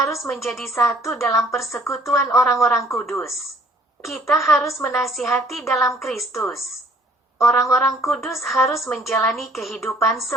menjadi satu dalam persekutuan orang-orang kudus. Kita harus menasihati dalam Kristus. Orang-orang kudus harus menjalani kehidupan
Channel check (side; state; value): both; normal; correlation 0.60